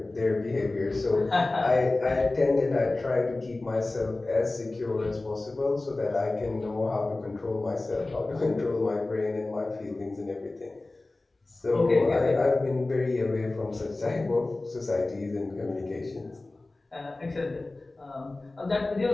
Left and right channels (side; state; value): right; quieter; 3.0 dB